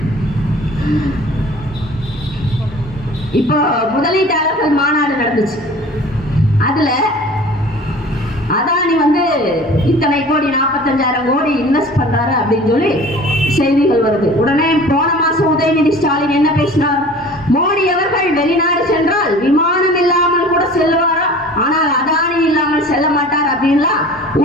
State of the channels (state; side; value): normal; both; correlation 0.44